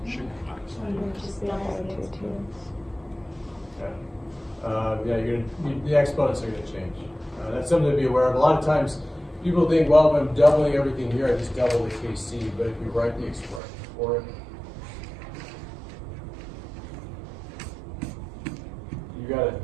Just double the exponents. Okay. Yeah, the exponents are gonna change. That's something to be aware of. A lot of times, people think, well, if I'm doubling everything here, I just double the Kc, but if you write the expression for it, you gotta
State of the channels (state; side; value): drops out; left; at 13.6 s